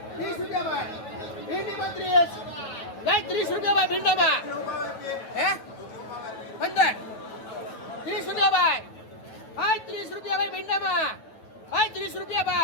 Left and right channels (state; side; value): late; right; 9.2 ms